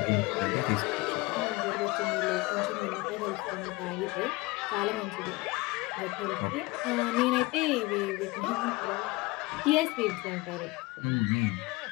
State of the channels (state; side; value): quieter; right; 22.7 dB